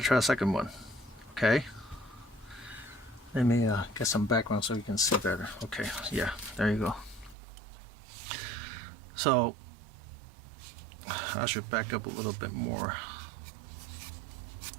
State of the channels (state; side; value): drops out; left; at 7.4 s